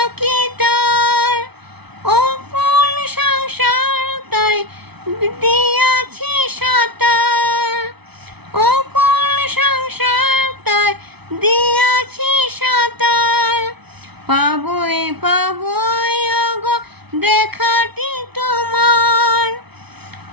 তার, অপন সংসার তাই দিয়াছি সাঁতার, অপন সংসার তাই দিয়াছি সাঁতার। পাবই পাবই ওগো দেখাটি তোমার,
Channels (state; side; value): late; left; 0.99 ms